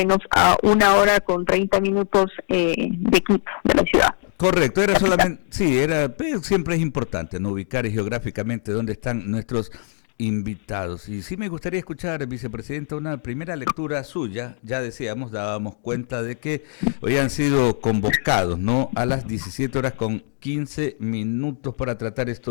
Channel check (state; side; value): silent; right; 58 dB below the other